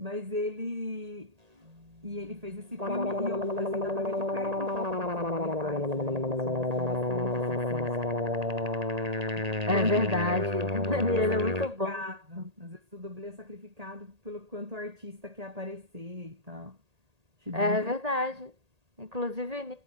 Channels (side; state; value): left; late; 1.8 ms